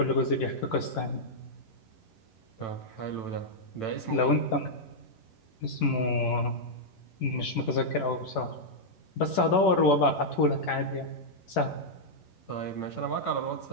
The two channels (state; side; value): late; right; 11 ms